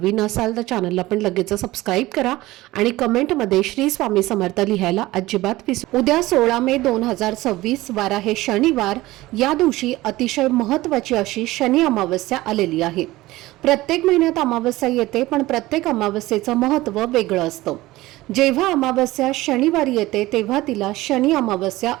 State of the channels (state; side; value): quieter; left; 18.2 dB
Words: असाल तर चॅनलला पण लगेच सबस्क्राईब करा आणि कमेंटमध्ये श्री स्वामी समर्थ लिहायला अजिबात विसरू. उद्या 16 मे 2026 वार आहे शनिवार. या दिवशी अतिशय महत्त्वाची अशी शनी अमावस्या आलेली आहे. प्रत्येक महिन्यात अमावस्या येते, पण प्रत्येक अमावस्येचं महत्त्व वेगळं असतं. जेव्हा अमावस्या शनिवारी येते तेव्हा तिला शनी अमावस्या